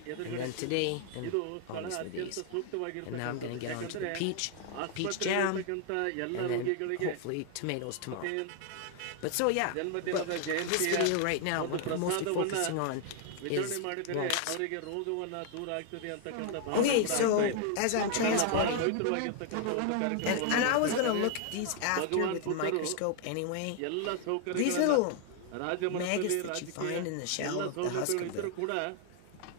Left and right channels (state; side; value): different; both; correlation 0.00